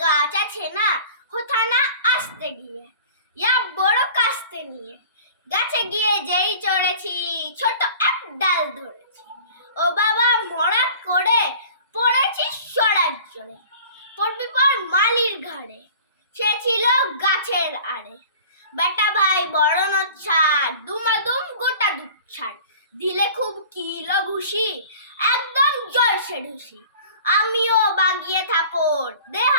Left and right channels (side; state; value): both; inverted; correlation -0.44